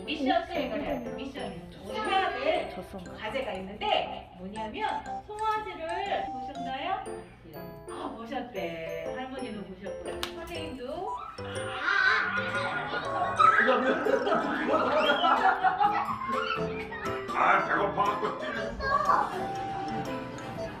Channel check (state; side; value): identical; both; correlation 1.00